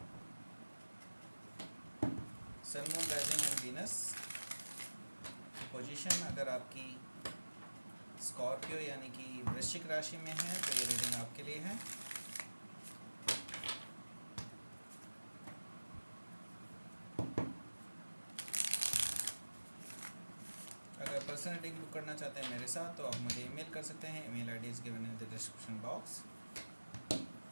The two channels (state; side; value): inverted; both; correlation -1.00